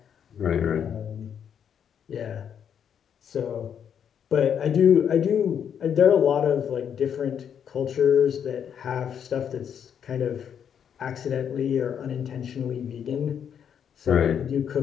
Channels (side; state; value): right; quieter; 8.3 dB